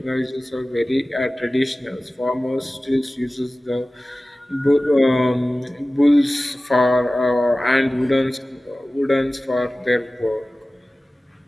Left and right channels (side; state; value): both; normal; correlation 0.97